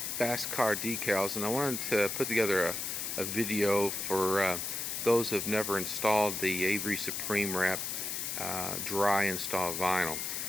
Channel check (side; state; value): left; noise; hiss, 3 dB below the sound